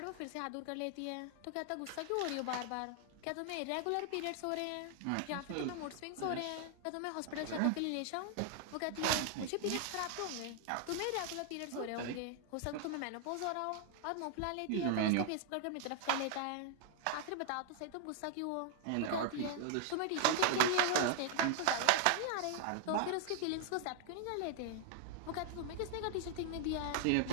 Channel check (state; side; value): different; both; correlation 0.00